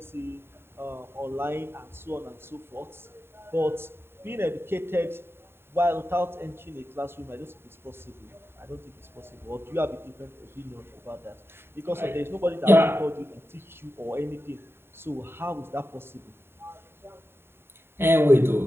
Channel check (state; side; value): late; left; 0.11 ms